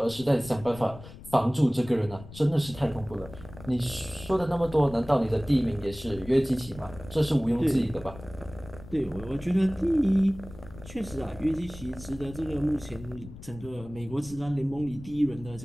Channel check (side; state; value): left; noise; rumble, 16 dB below the sound